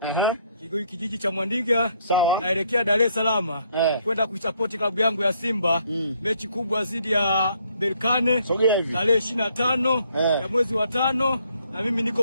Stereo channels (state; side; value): inverted; both; correlation -0.69